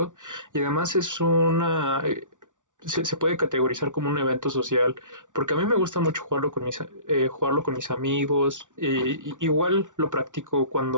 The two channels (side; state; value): left; late; 0.87 ms